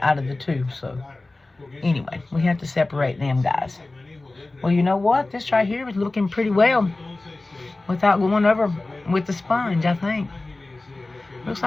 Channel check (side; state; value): right; quieter; 3.1 dB